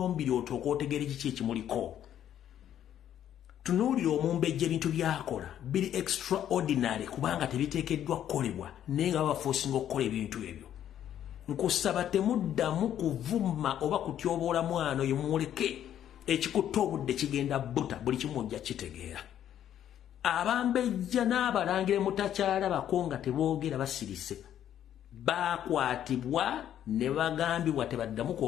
otooka otegeera kiki ekimuliko tunuulira omumbejja ebintu byakola biri extraordinary kubanga tebiteekeddwa kukolebwa naye nga babaforcinga okukola ebintu ebyo nkusaba temuddamu kuvuma oba kutyoboola mwana oyo muleke ekikutta obudde kigenda buta buli kimu ojja kitegeera abambejja n'abalangira mutakyalabako nga teboogera basirise bakwatibwa ne bagambibwa tebaddamu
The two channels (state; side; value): quieter; right; 10.6 dB